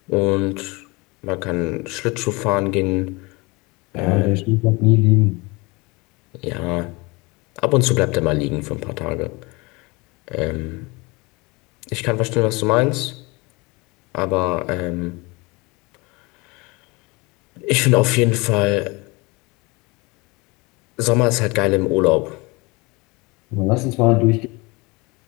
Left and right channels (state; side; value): quieter; right; 25.7 dB